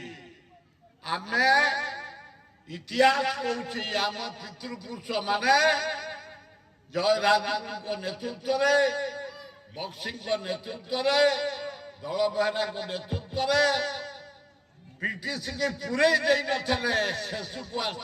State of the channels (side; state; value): both; identical; correlation 1.00